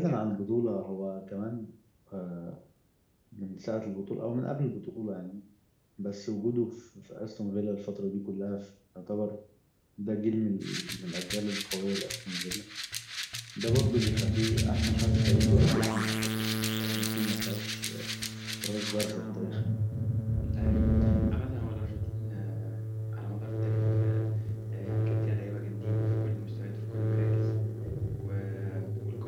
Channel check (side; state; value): both; identical; correlation 1.00